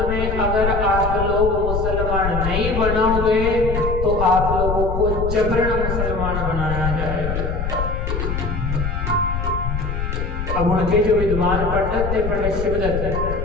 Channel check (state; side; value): noise; left; rumble, 2 dB below the sound